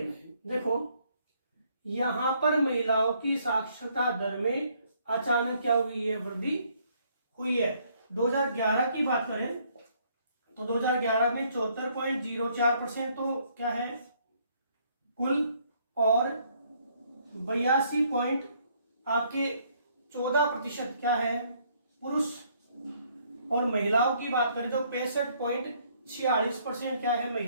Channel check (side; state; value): both; inverted; correlation -0.67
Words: देखो यहां पर महिलाओं की साक्षरता दर में अचानक क्या हुई है, वृद्धि हुई है। 2011 की बात करें तो 2011 में 74.04% तो क्या है कुल, और 82.14% क्या है पुरुष, और महिलाओं की बात करें तो 65.46% क्या है